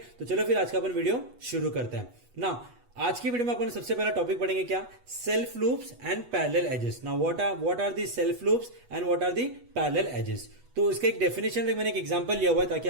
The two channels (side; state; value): left; late; 8.2 ms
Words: तो चलो फिर आज का अपन वीडियो शुरू करते हैं ना। आज की वीडियो में अपन सबसे पहला टॉपिक पढ़ेंगे क्या, self loops and parallel edges. Now what are the self loops and what are the parallel edges. तो इसका एक डेफिनेशन मैंने एक एग्जांपल लिया हुआ है ताकि